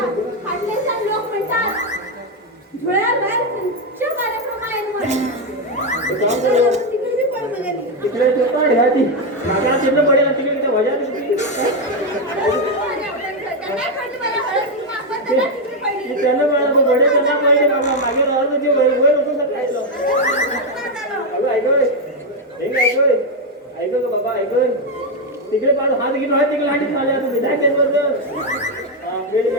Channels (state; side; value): normal; both; correlation 0.05